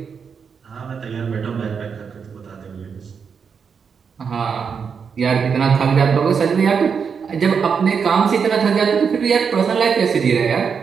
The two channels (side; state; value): left; quieter; 6.3 dB